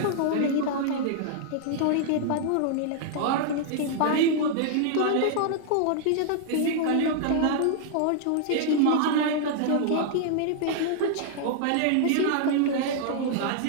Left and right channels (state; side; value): different; both; correlation -0.01